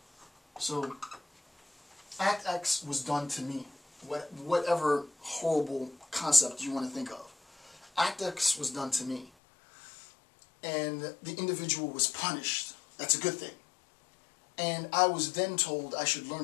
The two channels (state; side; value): drops out; right; at 9.3 s